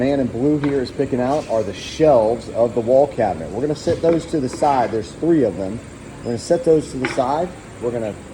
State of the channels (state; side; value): identical; both; correlation 1.00